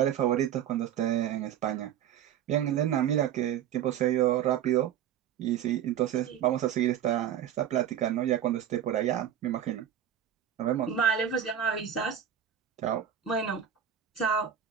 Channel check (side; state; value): left; quieter; 9.7 dB